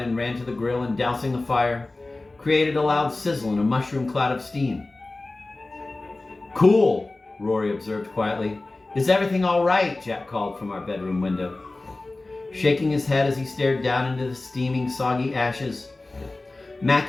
and ran to the grill, and dousing the fire, created a loud sizzle and a mushroom cloud of steam. "Cool," Rory observed quietly. "Is everything all right?" Jack called from our bedroom window. Shaking his head as he stared down into the steaming, soggy ashes,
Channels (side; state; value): right; quieter; 3.1 dB